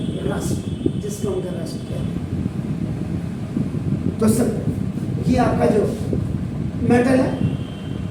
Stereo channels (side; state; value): both; identical; correlation 1.00